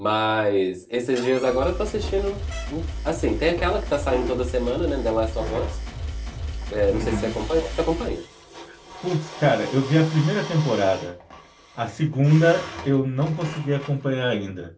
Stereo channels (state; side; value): identical; both; correlation 1.00